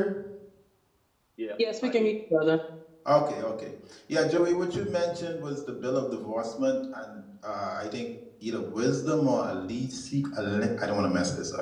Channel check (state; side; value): identical; both; correlation 1.00